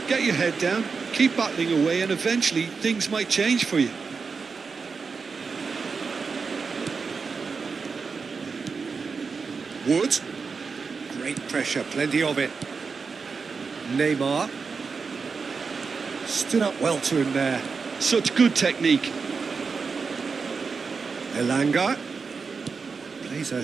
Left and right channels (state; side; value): quieter; left; 5.0 dB